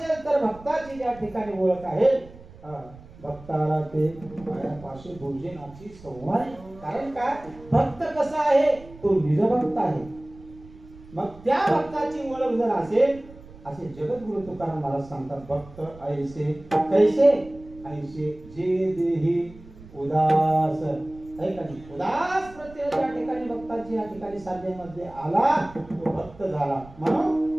तर भक्ताची ज्या ठिकाणी ओळख आहे, भक्ताला ते पायापाशी भोजनाची संवाद. कारण काय, भक्त कसा आहे? तो निजभक्त आहे. मग त्या भक्ताची ओळख जर असेल, असे जगद्गुरु तुकाराम महाराज सांगतात, भक्त ऐसे कैसे, ऐसे जे देही उदास. उदास प्रत्यय ज्या ठिकाणी भक्ताची या ठिकाणी साधनेमध्ये आला तो भक्त झाला.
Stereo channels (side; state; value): right; noise; rumble, 20 dB below the sound